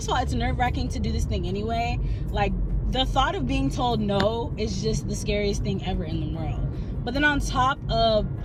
of all, it's nerve-wracking to do this thing anyway. Like the thought of being told no is just the scariest thing ever in the world. But then on top of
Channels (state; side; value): identical; both; correlation 1.00